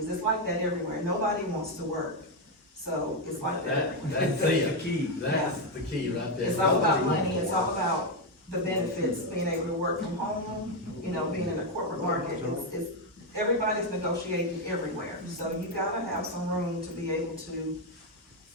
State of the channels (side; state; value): both; normal; correlation 0.05